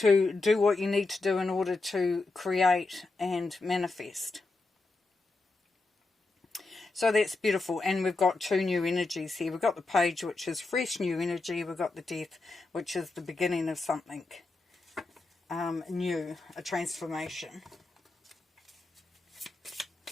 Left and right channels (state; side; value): quieter; right; 3.5 dB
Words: do what you need to do in order to create and manifest. So that's beautiful, and we've got two new energies here. We've got the Page, which is fresh new energy. We've got the Death, which is the beginning of something new, a transformation.